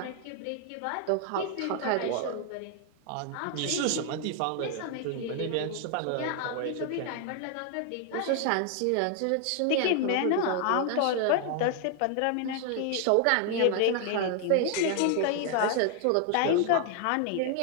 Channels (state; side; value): different; both; correlation 0.00